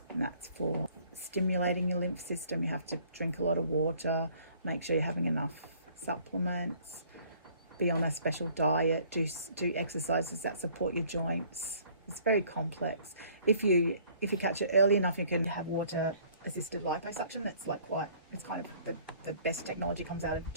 and that's for stimulating your lymph system. You have to drink a lot of water, make sure you're having enough supplements, be on a special diet, do exercises that support your joints. It's very complex. If you catch it early enough, you can have water assisted liposuction. It's it's kind of the best technology comes out of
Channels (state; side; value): inverted; both; correlation -0.58